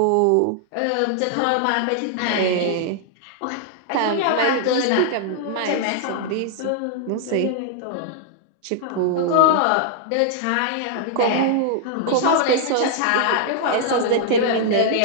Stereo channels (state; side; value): different; both; correlation -0.01